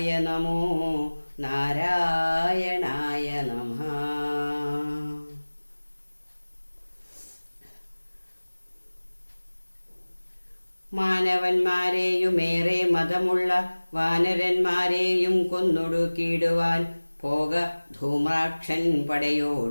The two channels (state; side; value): inverted; both; correlation -1.00